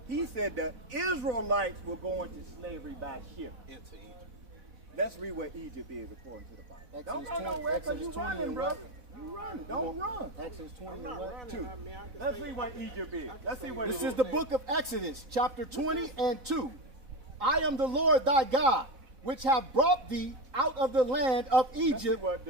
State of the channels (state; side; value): late; left; 4.1 ms